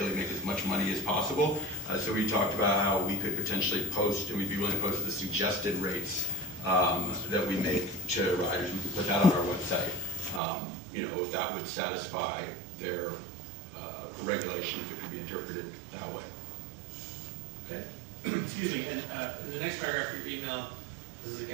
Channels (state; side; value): drops out; left; at 10.4 s